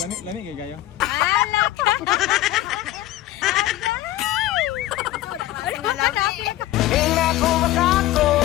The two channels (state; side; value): quieter; right; 14.9 dB